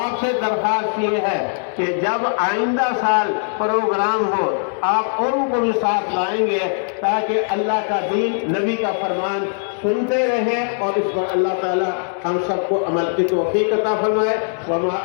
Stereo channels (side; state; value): right; silent; digital silence